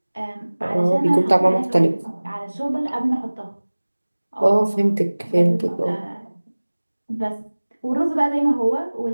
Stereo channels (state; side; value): inverted; both; correlation -1.00